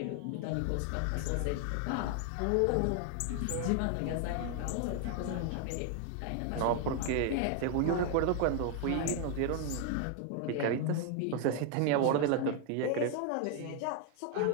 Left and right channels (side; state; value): both; different; correlation 0.00